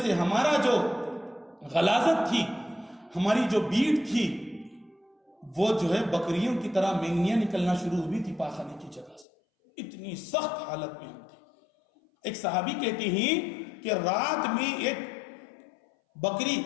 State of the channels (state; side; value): drops out; right; at 9.2 s